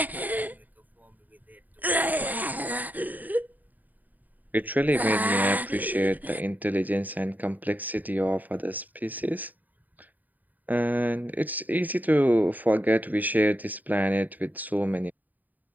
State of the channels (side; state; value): left; late; 0.083 ms